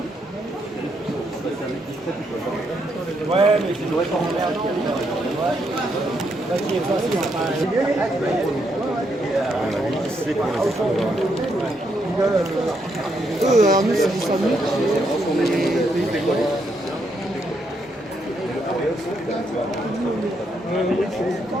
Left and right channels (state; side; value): normal; both; correlation 0.77